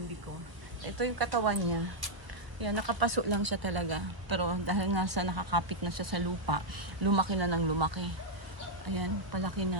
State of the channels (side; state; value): left; late; 1.3 ms